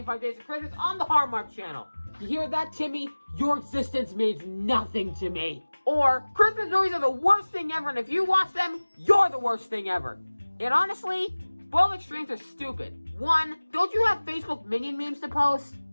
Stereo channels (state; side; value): inverted; both; correlation -1.00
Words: Days of Christmas on the Hallmark Channel. You hear that, Timmy? Your existence means nothing to me. Or, Christmas movies are the worst thing ever, and if you watch them, you're the worst thing ever. And honestly, both extremes are stupid. One, don't you have Facebook minion memes to post?